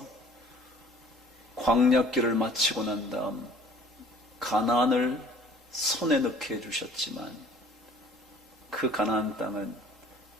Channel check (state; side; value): normal; both; correlation 0.52